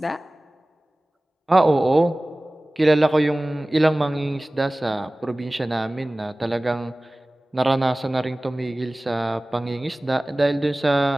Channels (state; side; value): normal; both; correlation 0.98